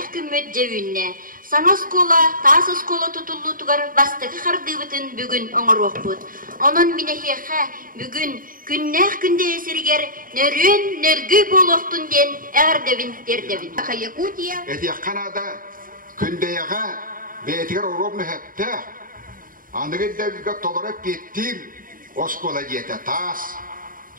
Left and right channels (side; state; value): left; late; 0.40 ms